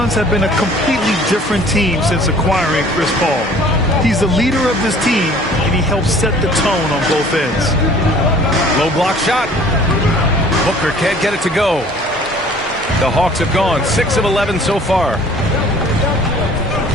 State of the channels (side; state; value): both; normal; correlation 0.52